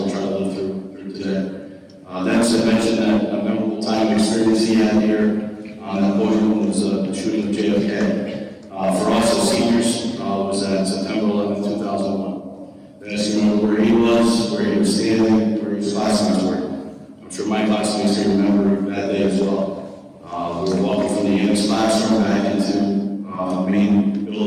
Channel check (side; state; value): both; identical; correlation 1.00